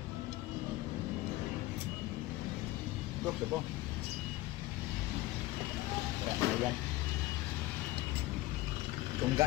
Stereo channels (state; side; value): quieter; right; 17.9 dB